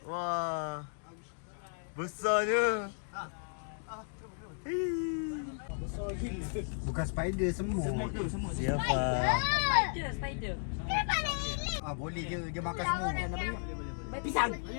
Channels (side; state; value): right; silent; digital silence